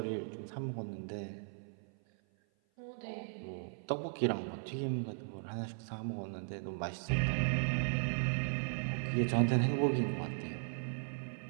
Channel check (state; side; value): silent; left; 53 dB below the other